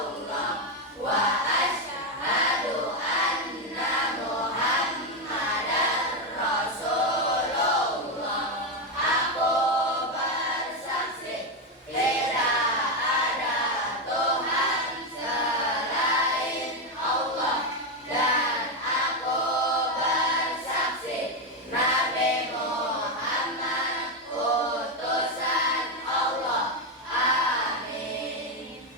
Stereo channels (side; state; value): both; normal; correlation 0.08